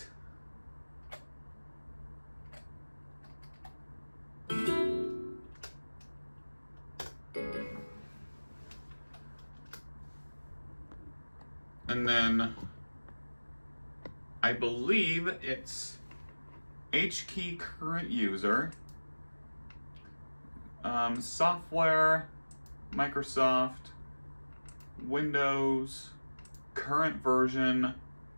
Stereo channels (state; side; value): inverted; both; correlation -1.00